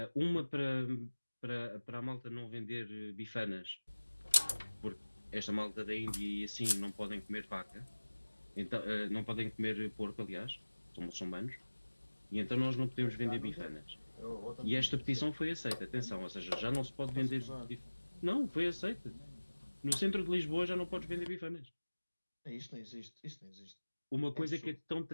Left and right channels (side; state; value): both; inverted; correlation -1.00